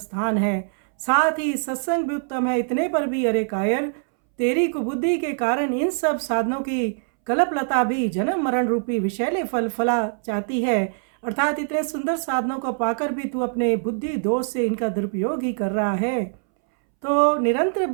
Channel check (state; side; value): silent; left; 63 dB below the other